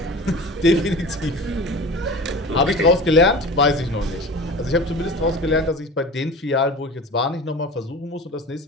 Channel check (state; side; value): normal; both; correlation 0.36